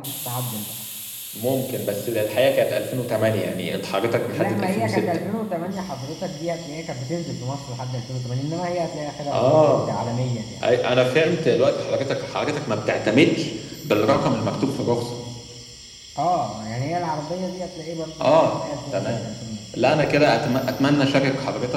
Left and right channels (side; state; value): both; identical; correlation 1.00